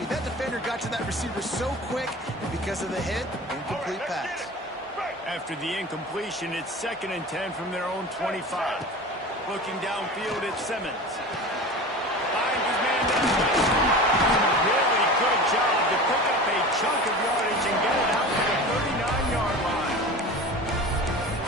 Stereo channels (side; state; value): both; normal; correlation 0.34